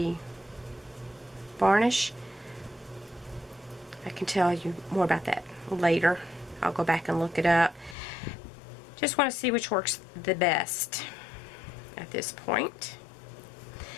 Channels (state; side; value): drops out; right; at 8.0 s